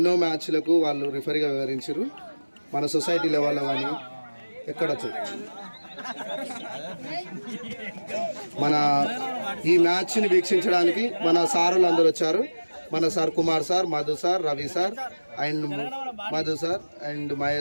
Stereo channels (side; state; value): both; inverted; correlation -1.00